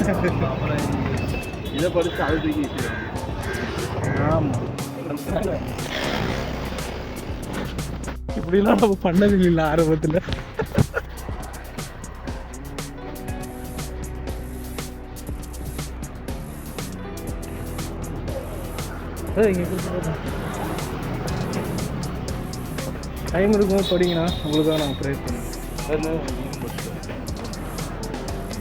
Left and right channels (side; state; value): both; identical; correlation 1.00